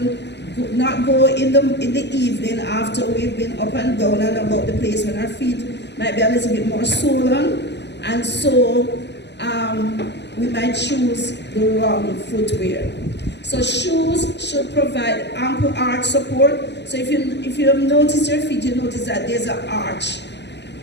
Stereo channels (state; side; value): late; right; 0.50 ms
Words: not go in the evening after we've been up and down and about the place when our feet might be a little bit more swollen, and so we might choose the wrong footwear. So shoes should provide ample arch support. So if you have noticed your feet, you notice that there's an arch,